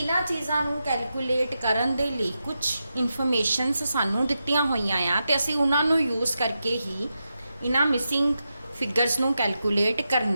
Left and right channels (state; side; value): inverted; both; correlation -0.88